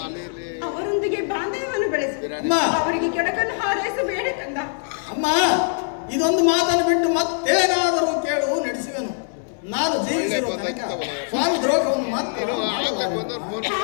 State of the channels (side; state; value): right; silent; 63 dB below the other